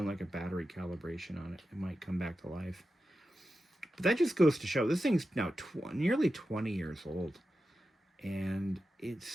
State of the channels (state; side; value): normal; both; correlation 0.91